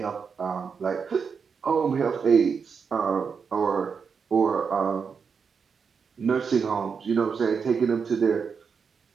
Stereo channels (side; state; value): left; quieter; 5.9 dB